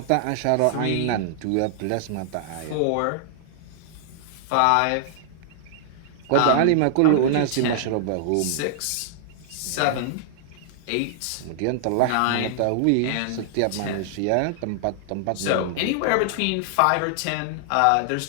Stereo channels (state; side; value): different; both; correlation -0.01